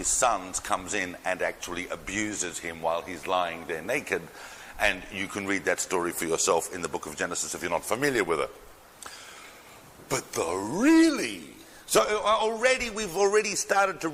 sons comes in and actually abuses him while he's lying there naked. And you can read that story for yourself in the book of Genesis if you're not familiar with it. But we've already started to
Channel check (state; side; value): identical; both; correlation 1.00